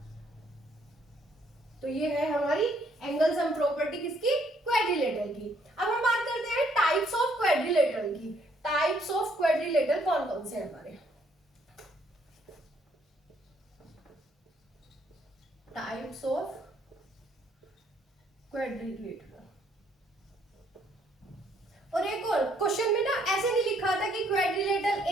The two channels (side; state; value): both; normal; correlation 0.67